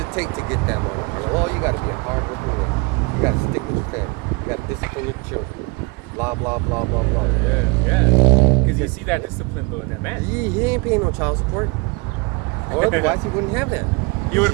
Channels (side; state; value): left; quieter; 28.0 dB